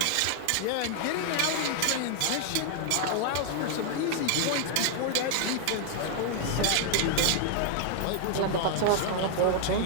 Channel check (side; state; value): both; different; correlation 0.00